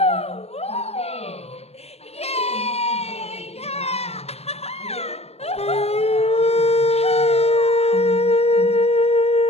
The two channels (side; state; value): right; late; 0.30 ms